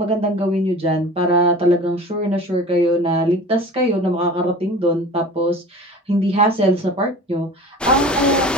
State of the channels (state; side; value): normal; both; correlation 0.39